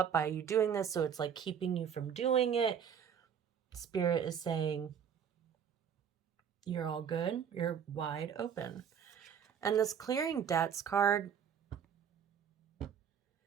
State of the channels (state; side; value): quieter; left; 7.9 dB